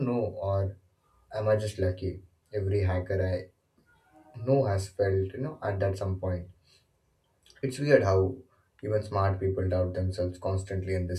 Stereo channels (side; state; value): both; identical; correlation 1.00